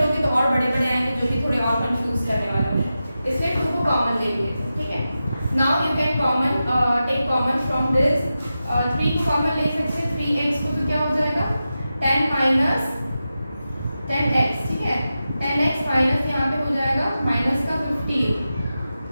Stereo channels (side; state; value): both; inverted; correlation -0.92